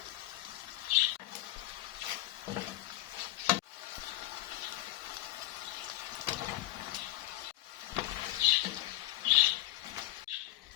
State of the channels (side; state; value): right; quieter; 16.3 dB